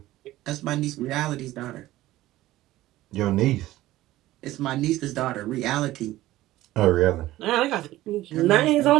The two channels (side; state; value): left; quieter; 16.1 dB